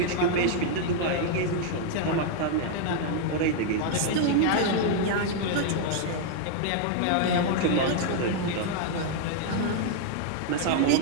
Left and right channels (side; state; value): both; different; correlation 0.00